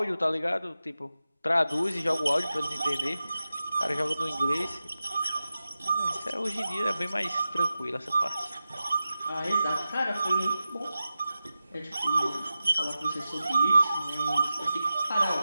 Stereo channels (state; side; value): inverted; both; correlation -0.94